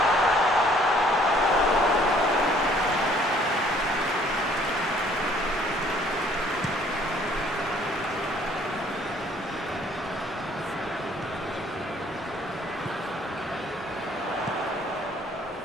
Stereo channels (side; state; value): both; normal; correlation 0.59